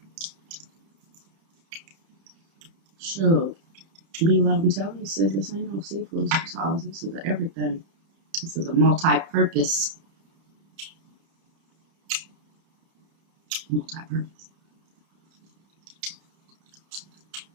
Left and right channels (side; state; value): left; late; 30 ms